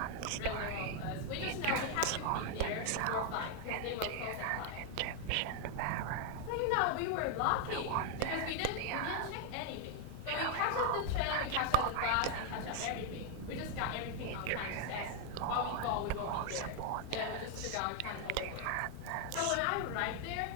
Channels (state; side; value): different; both; correlation 0.00